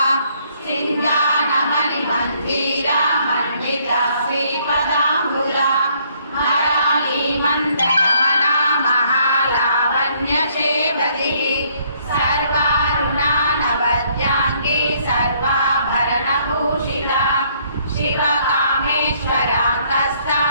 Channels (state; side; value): inverted; both; correlation -0.66